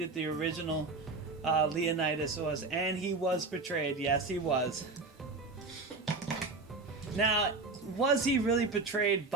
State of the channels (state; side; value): quieter; left; 3.7 dB